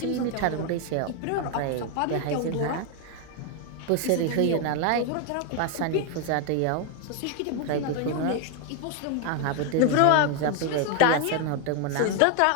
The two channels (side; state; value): both; different; correlation 0.01